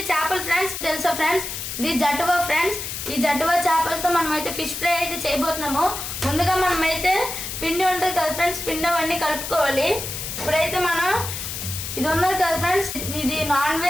చేపలు ఫ్రెండ్స్. తెలుసా ఫ్రెండ్స్, ఇది జట్టువా ఫ్రెండ్స్. ఈ జట్టువా చేపలతో మనం అయితే ఫిష్ ఫ్రై అయితే చేయబోతున్నాము. ముందుగా మనం అయితే పిండి ఉంటుంది కదా ఫ్రెండ్స్, పిండి అవన్నీ కలుపుకోవాలి. ఇప్పుడైతే మనం ఇది ఉన్నది కదా ఫ్రెండ్స్, ఇది నాన్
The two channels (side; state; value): left; noise; hiss, 6 dB below the sound